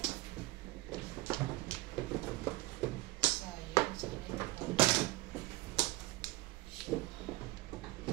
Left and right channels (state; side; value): quieter; left; 20.0 dB